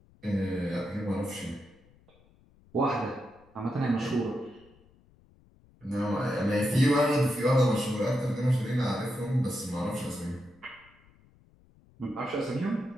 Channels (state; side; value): noise; left; rumble, 29 dB below the sound